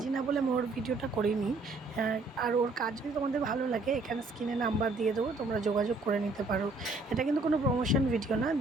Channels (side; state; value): left; quieter; 3.3 dB